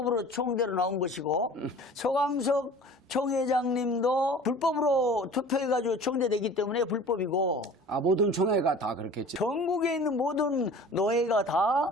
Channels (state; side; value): normal; both; correlation 0.44